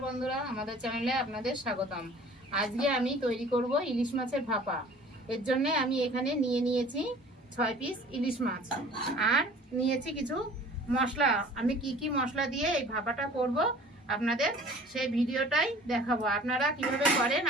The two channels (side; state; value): both; normal; correlation 0.48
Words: বন্ধুরা, আমাদের চ্যানেলে আপনাদের স্বাগতম। আজকে আমি তৈরি করব ইলিশ মাছের ভাপা। এর জন্য আমি এখানে নিয়েছি 6 পিস ইলিশ মাছ আর নিয়েছি কিছু মশলা। আমি কি মশলা দিয়ে এই ভাপাটা করব আপনাদের সেই ভিডিওটাই দেখাবো। আপনারা কিভাবে করেন